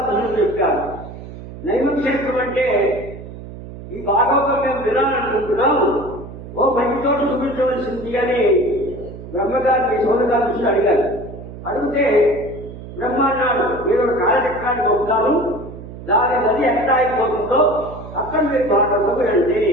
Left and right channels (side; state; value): right; noise; hum, 13 dB below the sound